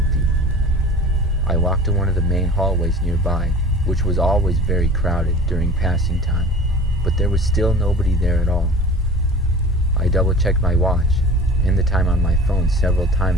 I walked to one of the main hallways nearby, which was always very crowded during passing time, but there was still nobody there at all. I double-checked my watch and the time on my phone several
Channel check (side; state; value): both; normal; correlation 0.40